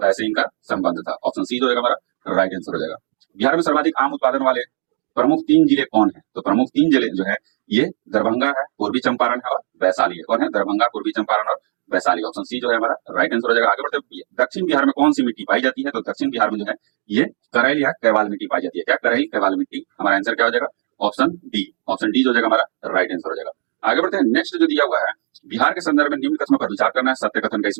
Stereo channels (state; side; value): silent; left; digital silence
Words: से इनका संबंध था। ऑप्शन सी जो होगा हमारा राइट आंसर हो जाएगा। बिहार में सर्वाधिक आम उत्पादन वाले प्रमुख 3 जिले कौन है? तो प्रमुख 3 जिले जो है ये दरभंगा है, पूर्वी चंपारण है और वैशाली है। कौन है? दरभंगा, पूर्वी चंपारण और वैशाली। ऑप्शन सी जो है हमारा राइट आंसर हो जाएगा। आगे बढ़ते दक्षिण बिहार में कौन सी मिट्टी पाई जाती है? तो दक्षिण बिहार में जो है ये करैल या कैवाल मिट्टी पाई जाती है। क्या? करैल कैवाल मिट्टी। हमारा आंसर क्या हो जाएगा? Option D. ऑप्शन डी जो हो जाएगा हमारा राइट आंसर हो जाएगा। आगे बढ़ते हैं नेक्स्ट जो दिया हुआ है, बिहार के संदर्भ में निम्न कथनों पर विचार करना है, सत्य कथन का